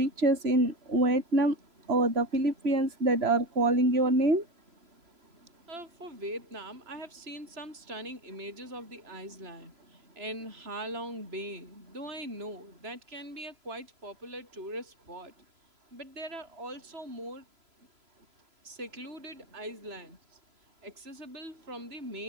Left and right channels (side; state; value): left; late; 3.0 ms